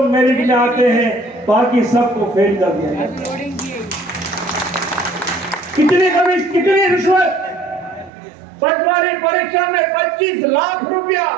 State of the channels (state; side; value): drops out; left; at 8.1 s